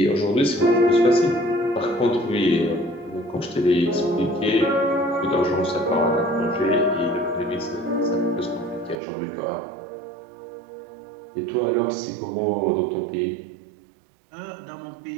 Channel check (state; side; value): drops out; left; at 9.0 s